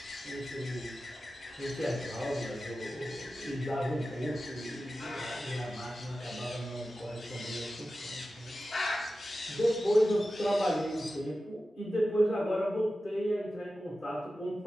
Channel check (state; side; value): normal; both; correlation 0.94